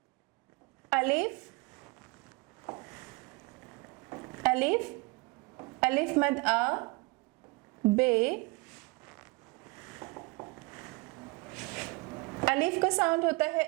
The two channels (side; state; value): left; quieter; 26.5 dB